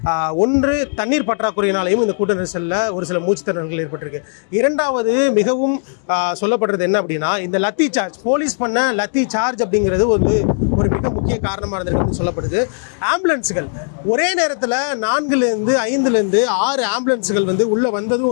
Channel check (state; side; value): silent; right; digital silence